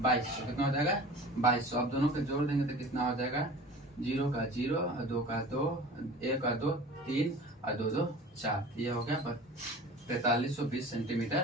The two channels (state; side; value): normal; both; correlation 0.40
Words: कितना हो जाएगा? 2200। अब दोनों को जोड़ देंगे तो कितना हो जाएगा? 0 का 0 और 2 का 2, 1 का 2, 3 और 2 2 4, ये हो गया 4320